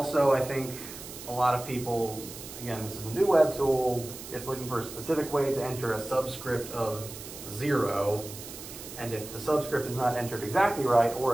I think a lot of people, again, this is a new web tool, it's looking for a specific way to enter a subscript of 0. And if the subscript is not entered exactly right,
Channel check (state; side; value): noise; right; hiss, 12 dB below the sound